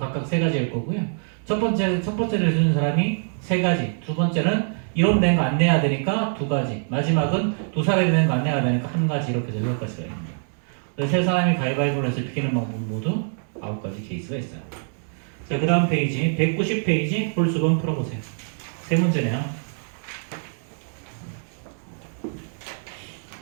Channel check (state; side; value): silent; left; digital silence